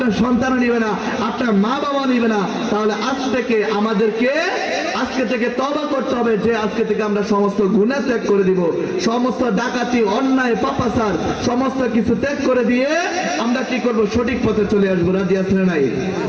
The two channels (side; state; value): both; identical; correlation 1.00